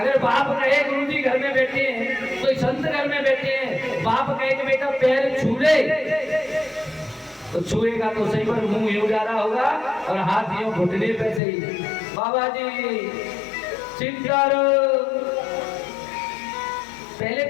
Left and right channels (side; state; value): right; drops out; at 11.4 s